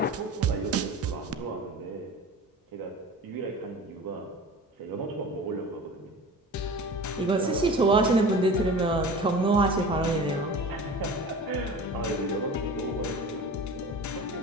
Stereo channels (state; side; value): normal; both; correlation 0.37